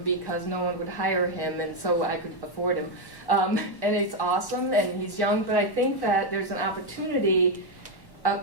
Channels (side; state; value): right; late; 1.1 ms